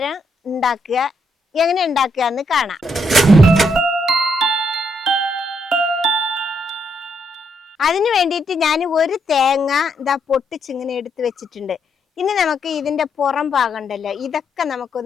ഉണ്ടാക്കുക. എങ്ങനെ ഉണ്ടാക്കുക എന്ന് കാണാം. അതിന് വേണ്ടിയിട്ട് ഞാൻ ഒരു തേങ്ങ ഇതാ പൊട്ടിച്ചിങ്ങനെ എടുത്ത് വെച്ചിട്ടുണ്ട്. ഇനി നമുക്ക് ഇതിന്റെ പുറം ഭാഗം ഉണ്ടല്ലോ, ഇതൊക്കെ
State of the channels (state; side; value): normal; both; correlation 0.76